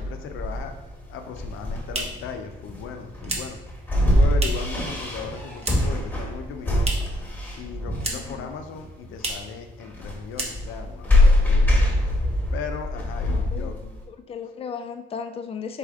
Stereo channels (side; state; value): both; normal; correlation 0.72